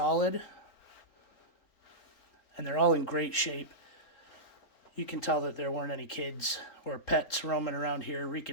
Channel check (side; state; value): right; late; 3.8 ms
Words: and they're all in great shape. You can tell that there weren't any kids or pets roaming around here